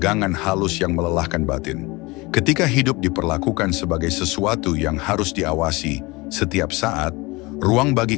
halus yang melelahkan batin. Ketika hidup diperlakukan sebagai sesuatu yang harus diawasi setiap saat, ruang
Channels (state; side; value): quieter; right; 23.8 dB